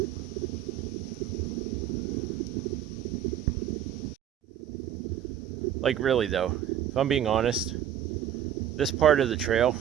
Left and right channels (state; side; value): quieter; left; 10.3 dB